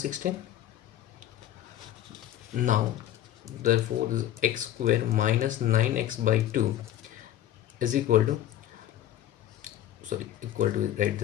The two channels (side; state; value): right; quieter; 12.3 dB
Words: Now therefore this x square minus 9x by 2 is equal to, sorry, equal to, right